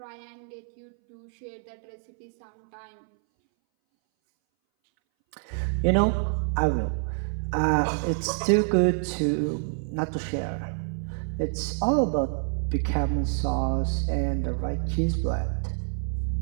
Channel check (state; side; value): silent; left; 60 dB below the other